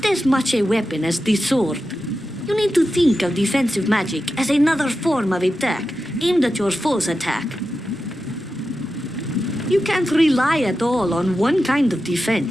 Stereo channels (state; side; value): normal; both; correlation 0.91